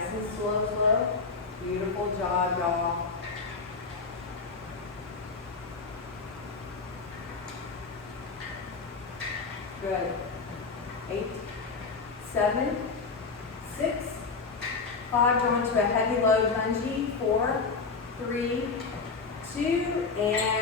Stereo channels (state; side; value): quieter; right; 4.5 dB